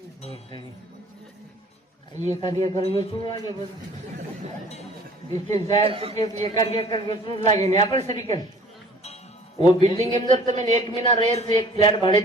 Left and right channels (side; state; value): both; normal; correlation 0.51